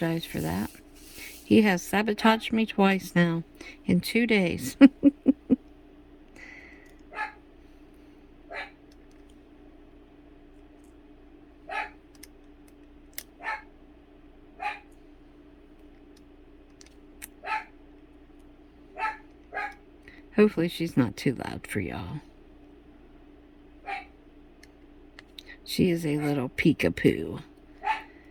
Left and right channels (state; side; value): identical; both; correlation 1.00